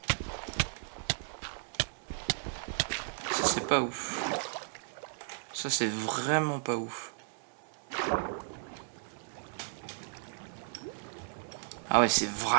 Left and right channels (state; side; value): silent; left; digital silence